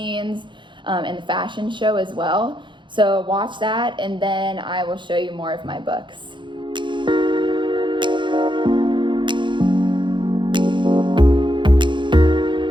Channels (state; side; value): late; left; 0.23 ms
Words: and the fashion show as well. So watch that, and then I will show you more of my books.